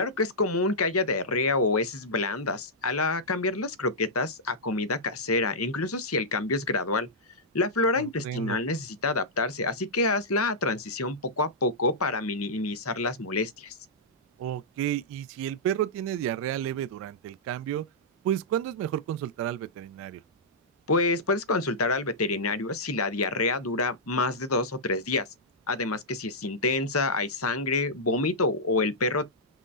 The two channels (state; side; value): normal; both; correlation -0.11